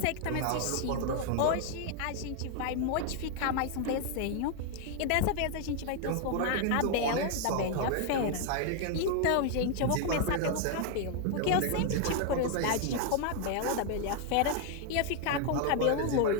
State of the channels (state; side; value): different; both; correlation 0.00